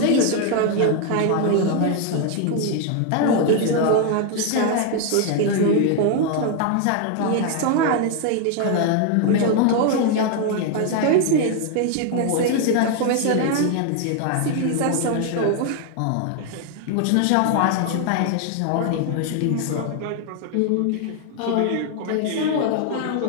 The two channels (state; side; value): different; both; correlation 0.00